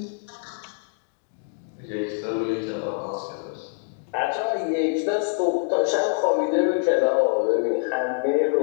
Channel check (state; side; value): silent; right; digital silence